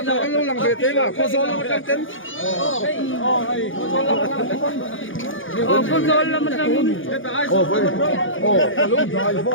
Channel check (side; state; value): right; late; 0.57 ms